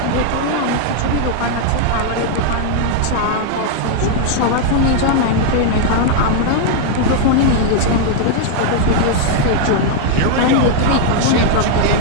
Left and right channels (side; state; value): both; different; correlation 0.00